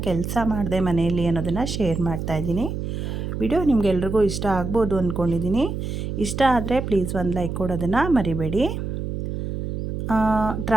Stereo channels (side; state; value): right; noise; hum, 4 dB below the sound